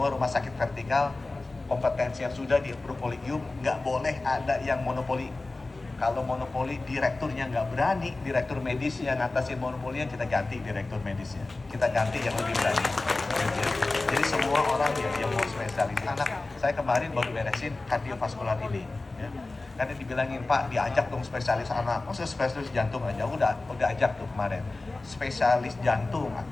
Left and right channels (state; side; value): quieter; right; 3.2 dB